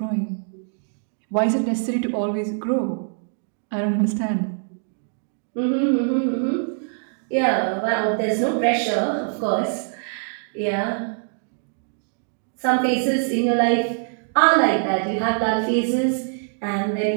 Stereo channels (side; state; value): left; silent; digital silence